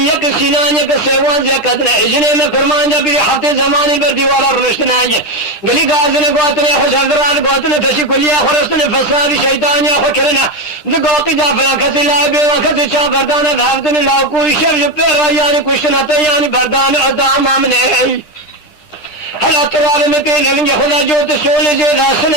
सीनाने के सेवान या कदने इजने में कुर्बान जब ये हफ्ते जमाने पर दीवारा रुश्तन आएंगे गली गाजने गोतने खुश हजरात गोतने तशी कुलिया खुरसने फसादी शैतानिया खुश करना जो गोती जाफला खसी लाए बेवा खसी चाह बरदाना धावतने लाओ कोई शब जो पेरा यानी कुछ नते यानी बरदान अदाम आमने हला तराब में के गलेंगे खुदा जो तो सोले जो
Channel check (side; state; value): right; late; 10 ms